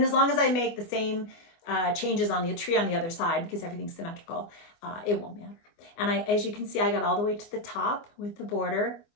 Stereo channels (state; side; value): late; right; 25 ms